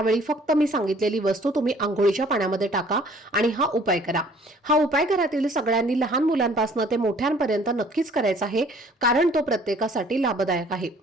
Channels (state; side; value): normal; both; correlation 0.56